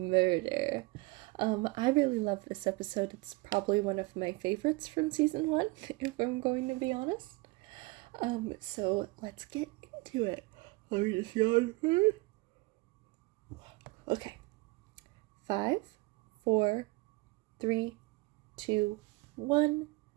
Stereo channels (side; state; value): left; quieter; 23.8 dB